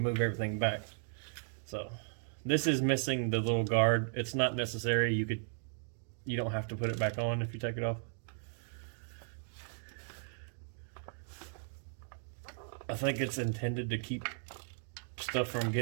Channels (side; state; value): left; silent; 54 dB below the other